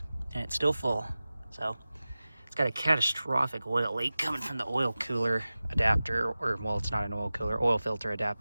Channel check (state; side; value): inverted; both; correlation -0.97